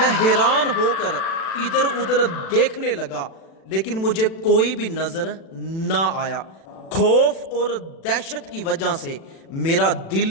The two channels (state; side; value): late; right; 36 ms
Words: حیران ہو کر ادھر ادھر دیکھنے لگا لیکن مجھے کوئی بھی نظر نہ آیا۔ خوف اور دہشت کی وجہ سے میرا